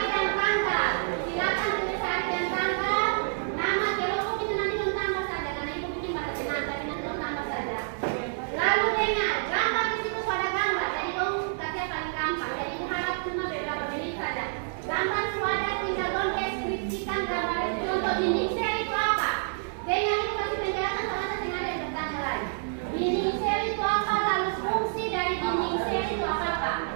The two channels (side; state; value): left; silent; 59 dB below the other